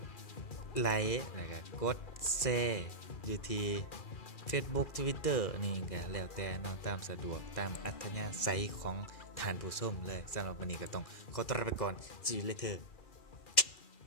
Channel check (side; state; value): right; late; 2.4 ms